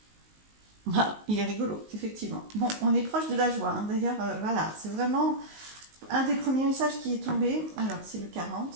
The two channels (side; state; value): left; late; 19 ms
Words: Ah, il est rigolo, effectivement. Bon, on est proche de la joie, hein. D'ailleurs, voilà, c'est vraiment un des premiers messages qui est tombé. Alors, c'est le